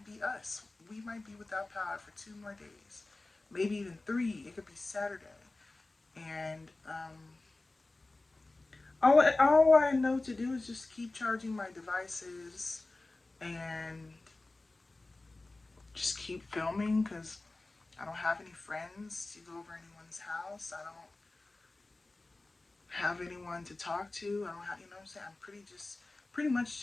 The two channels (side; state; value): right; quieter; 3.1 dB